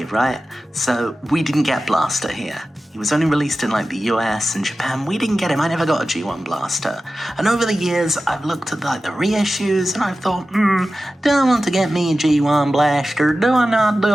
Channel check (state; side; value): normal; both; correlation 0.95